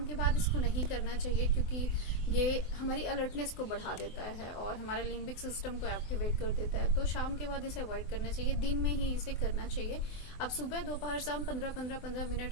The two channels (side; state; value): right; late; 24 ms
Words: के बाद इसको नहीं करना चाहिए क्योंकि ये हमारी अलर्टनेस को बढ़ा देता है और हमारे लिम्बिक सिस्टम को एक्टिवेट कर देता है। तो शाम के बाद इसे अवॉइड करना चाहिए, दिन में ही इसे करना चाहिए। आप सुबह, दोपहर, शाम 15